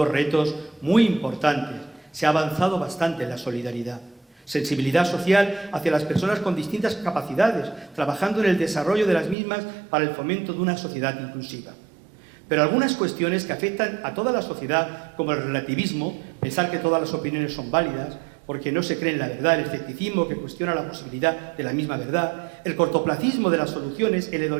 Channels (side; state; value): left; drops out; at 9.3 s